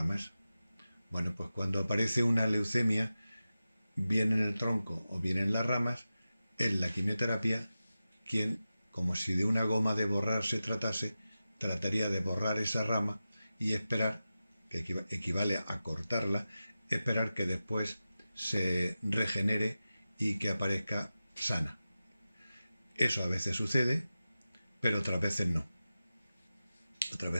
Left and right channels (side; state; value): both; inverted; correlation -0.94